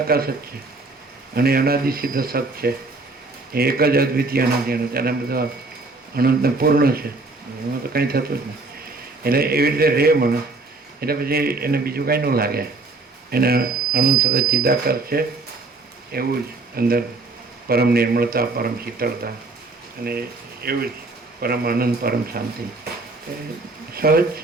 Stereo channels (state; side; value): quieter; left; 3.4 dB